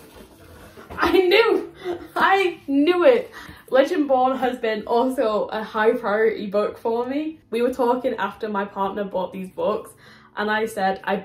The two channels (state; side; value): identical; both; correlation 1.00